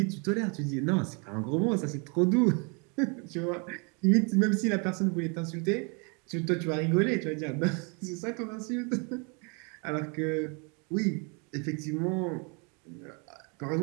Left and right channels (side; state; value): left; quieter; 34.0 dB